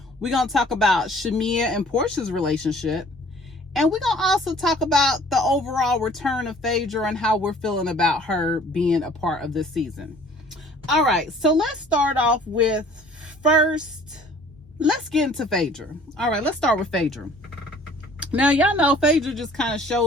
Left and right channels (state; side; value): normal; both; correlation 0.53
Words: We're gonna talk about Shamia and Portia's relationship, and we're gonna also talk about the overall return of Phaedra and how we're feeling about her being a part of this season. All right, so let's start off with let's get into Phaedra. All right, let's start with Phaedra. Now, y'all know Phaedra just kind of